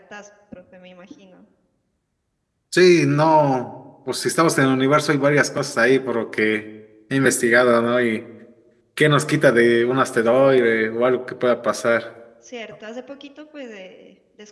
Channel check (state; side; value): identical; both; correlation 1.00